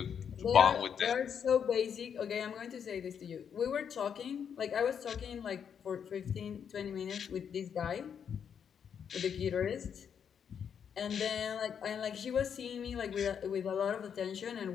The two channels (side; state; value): right; quieter; 7.7 dB